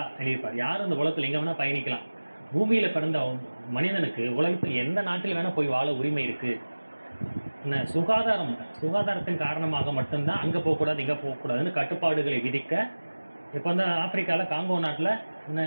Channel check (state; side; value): inverted; both; correlation -1.00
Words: எழுதியிருப்பார். யாரும் இந்த உலகத்தில் எங்கே வேணால் பயணிக்கலாம். பூமியில் பிறந்த மனிதனுக்கு உலகத்தில் எந்த நாட்டில் வேணால் போய் வாழ உரிமை இருக்குது. சுகாதாரத்தின் காரணமாக மட்டும்தான் அங்கே போகக்கூடாது இங்கே போகக்கூடாதுன்னு கட்டுப்பாடுகளை விதிக்க. இப்போ வந்து ஆப்பிரிக்காவில் காங்கோ நாட்டில்